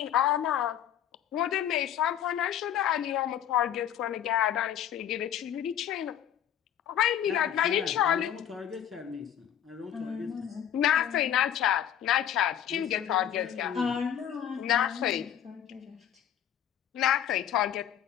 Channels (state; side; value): quieter; right; 10.1 dB